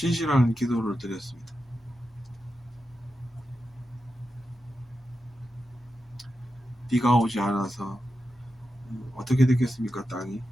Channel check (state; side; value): normal; both; correlation 0.90